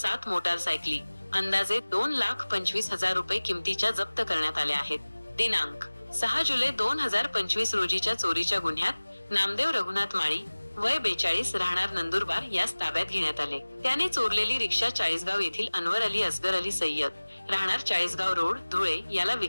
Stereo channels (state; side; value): inverted; both; correlation -1.00